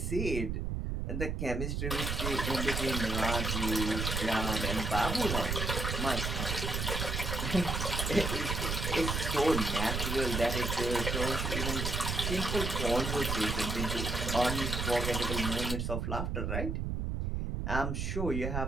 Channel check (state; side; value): noise; right; rumble, 1 dB below the sound